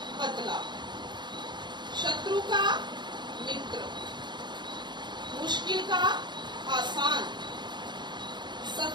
पतला, शत्रु का मित्र, मुश्किल का आसान,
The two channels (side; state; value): left; late; 0.22 ms